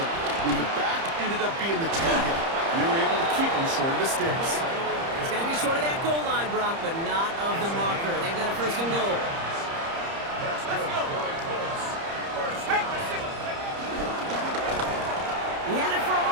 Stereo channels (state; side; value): late; left; 30 ms